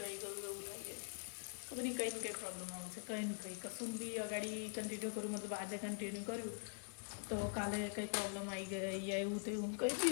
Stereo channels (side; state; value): right; silent; digital silence